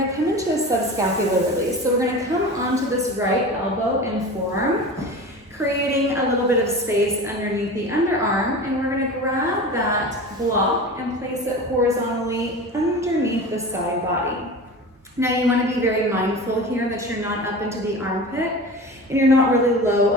to come into a subscapular release. So we're going to come onto this right elbow and forearm, creating a little bit of space underneath the underarm. And we're going to grab that block and place it horizontally underneath the side body. Now you want to be very mindful here that you're not up into the armpit and you're not really low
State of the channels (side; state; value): both; normal; correlation 0.33